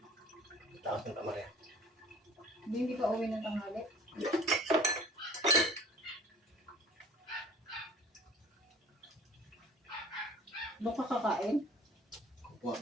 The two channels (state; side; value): normal; both; correlation 0.46